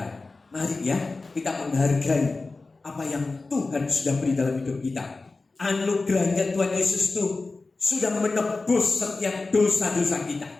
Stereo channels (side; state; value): right; quieter; 3.6 dB